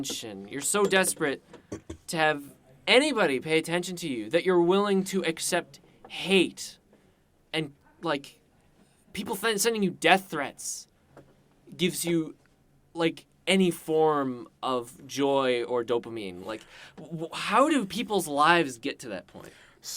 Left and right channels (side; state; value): both; identical; correlation 1.00